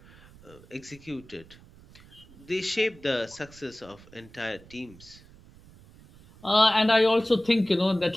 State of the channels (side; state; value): right; noise; rumble, 23 dB below the sound